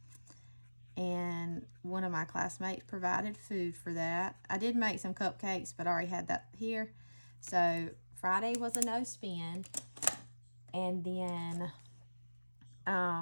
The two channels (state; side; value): inverted; both; correlation -1.00